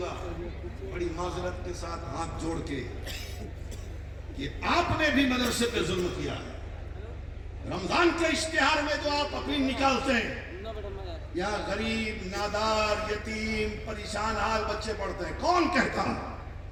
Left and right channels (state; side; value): identical; both; correlation 1.00